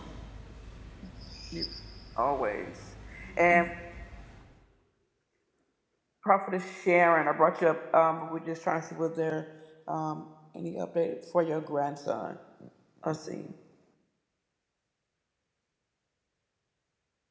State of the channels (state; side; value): identical; both; correlation 1.00